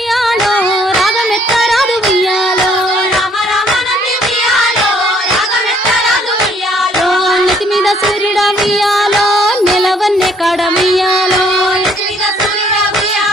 రాగమెత్తరాదు వియాలో రామ రామ నంది వియాలో రాగమెత్తరాదు వియాలో నెత్తి మీద సూర్యుడ వియాలో నెలవన్నే కాడ వియాలో నెత్తి మీద సూర్యుడ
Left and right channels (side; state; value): both; normal; correlation 0.63